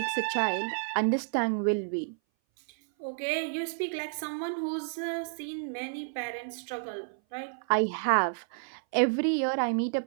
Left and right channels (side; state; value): left; silent; 57 dB below the other